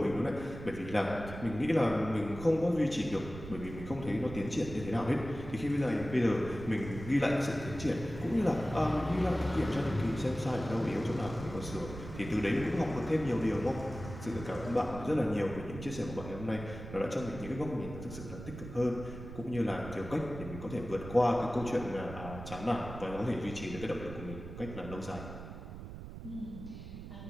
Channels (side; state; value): right; noise; rumble, 11 dB below the sound